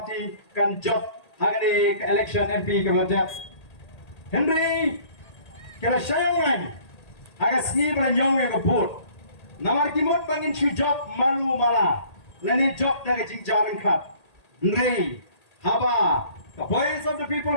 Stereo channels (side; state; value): right; late; 1.8 ms